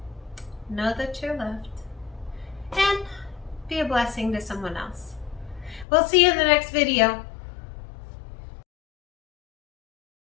Know that you're loved. And be a blessing to someone else. We'll see you in the next video.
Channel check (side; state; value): right; drops out; at 5.9 s